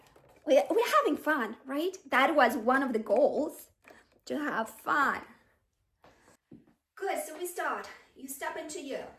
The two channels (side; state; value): both; identical; correlation 1.00